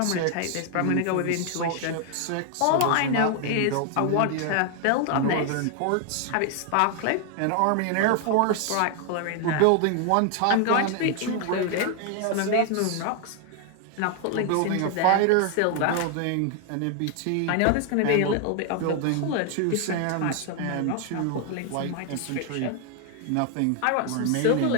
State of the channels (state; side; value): different; both; correlation 0.00